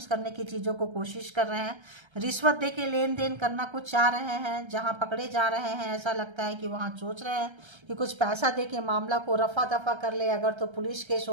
करने की चीज़ों को कोशिश कर रहे हैं। रिश्वत दे के लेन देन करना कुछ चाह रहे हैं, जहां पकड़े जा रहे हैं ऐसा लगता है कि वहां सोच रहे हैं कि कुछ पैसा दे के मामला को रफा दफा कर ले। अगर तो पुलिस केस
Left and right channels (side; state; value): left; late; 1.3 ms